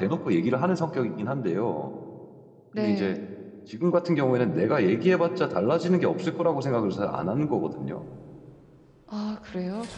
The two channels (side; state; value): both; identical; correlation 1.00